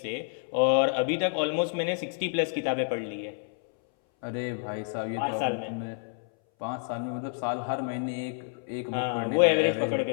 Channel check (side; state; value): right; silent; 59 dB below the other